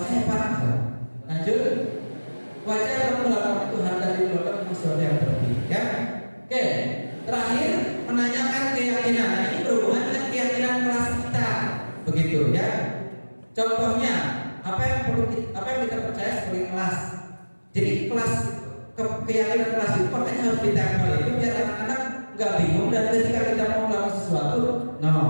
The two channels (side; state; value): both; inverted; correlation -1.00